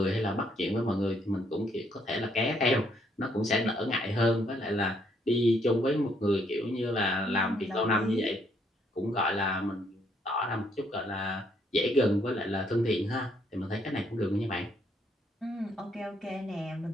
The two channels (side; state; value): both; normal; correlation 0.70